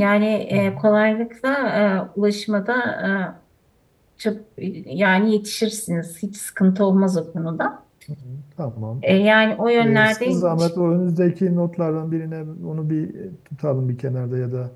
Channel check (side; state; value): both; identical; correlation 1.00